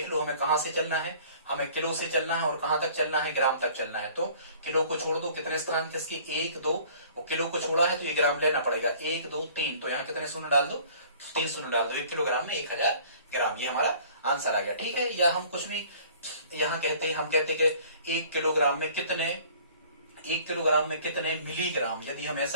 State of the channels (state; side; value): inverted; both; correlation -0.51